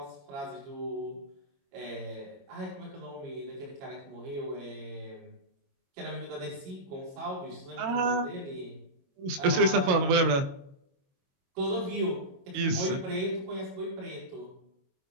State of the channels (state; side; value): late; left; 22 ms